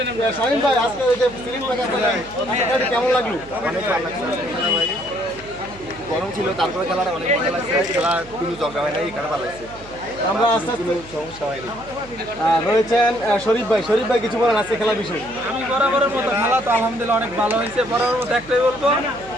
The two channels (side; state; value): right; noise; hum, 20 dB below the sound